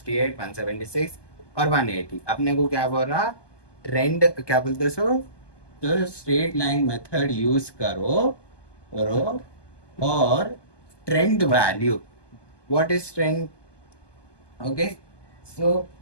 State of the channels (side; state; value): right; late; 1.2 ms